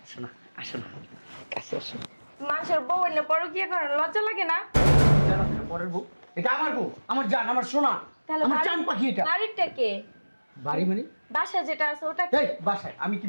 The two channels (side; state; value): both; inverted; correlation -1.00